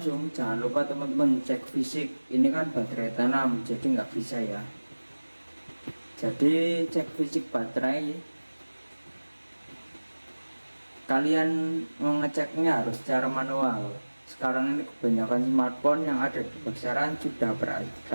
jangan lupa teman-teman cek fisik. Ini kan baterai tanam, jadi nggak bisa ya. Jadi cek fisik baterai, kalian mengeceknya harus secara manual. Sekarang ini kebanyakan smartphone yang ada di pasaran sudah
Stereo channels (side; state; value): both; inverted; correlation -1.00